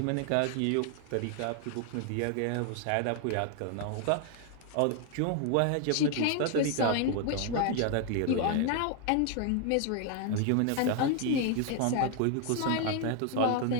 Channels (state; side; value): different; both; correlation 0.00